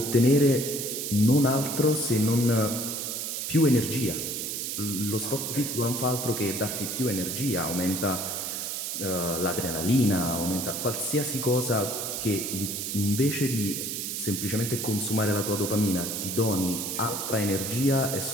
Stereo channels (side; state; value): right; noise; hiss, 3 dB below the sound